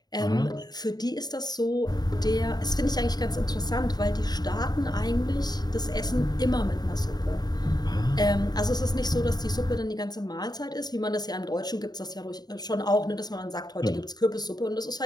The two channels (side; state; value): right; late; 0.20 ms